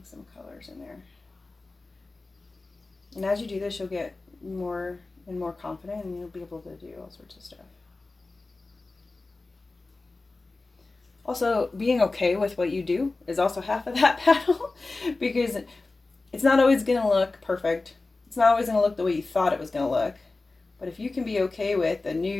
some colors in there. And as you do this, you'll get more and more confident and you'll be able to do all sorts of stuff. Also, being okay with what you do is also half of that battle because it's not always going to look perfect. It's not always going to look the way you thought it was going to look. But if you can be okay with a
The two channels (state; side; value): quieter; right; 3.4 dB